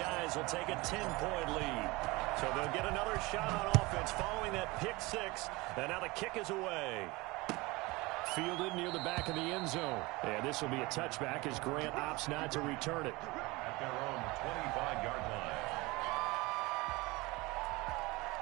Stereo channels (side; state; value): left; quieter; 22.9 dB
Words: will take a 10-point lead. So they'll get another shot on offense following that pick 6, and now the kick is away. Fielded near the back of the end zone. And this will be a touchback as Grant opts not to return it. At their own 25-yard line.